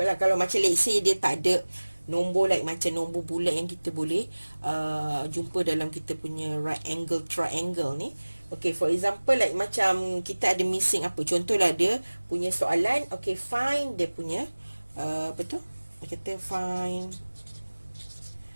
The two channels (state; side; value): inverted; both; correlation -1.00